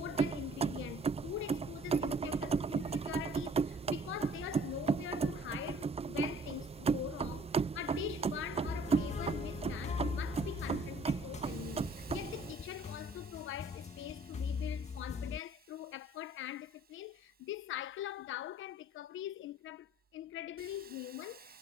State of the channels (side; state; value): both; normal; correlation 0.54